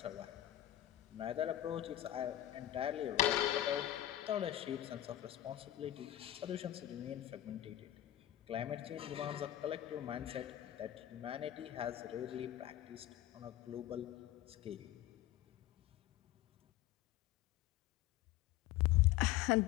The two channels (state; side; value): quieter; right; 13.4 dB